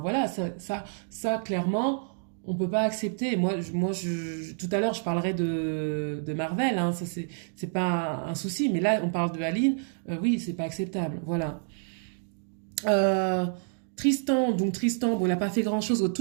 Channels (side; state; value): left; silent; digital silence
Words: voilà, ça clairement on peut pas accepter. Moi tout à l'heure je parlerai de Marvel, hein, ça c'est pas un souci. Mais là on parle de Aline, oui c'est pas acceptable. Voilà. Tristan, bon, il n'a pas fait grand-chose au